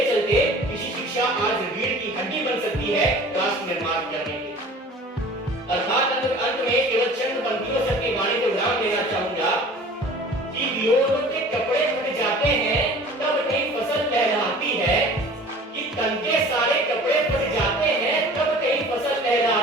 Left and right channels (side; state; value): both; normal; correlation 0.45